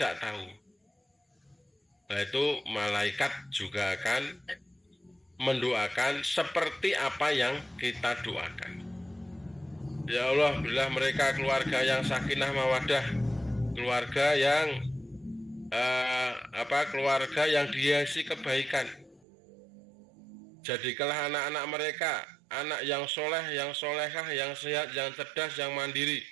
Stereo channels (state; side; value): drops out; left; at 19.2 s